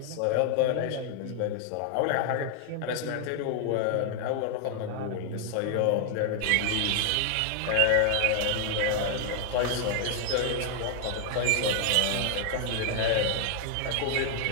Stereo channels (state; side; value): different; both; correlation 0.00